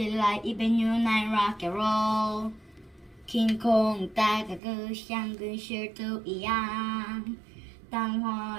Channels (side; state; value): left; drops out; at 4.6 s